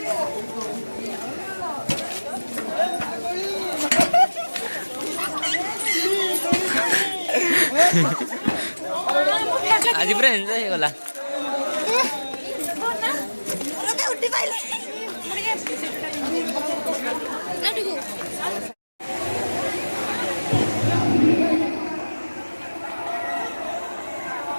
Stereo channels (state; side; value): inverted; both; correlation -1.00